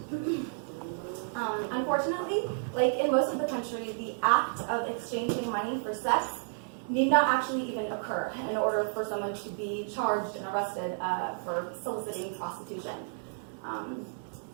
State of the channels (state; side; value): silent; left; digital silence